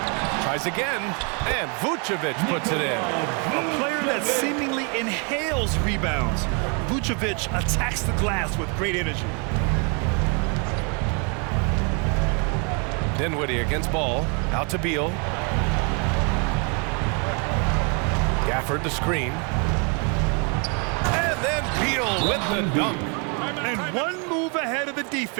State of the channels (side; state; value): left; quieter; 35.5 dB